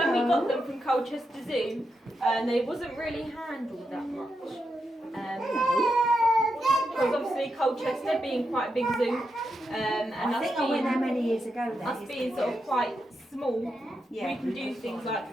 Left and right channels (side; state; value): both; normal; correlation 0.85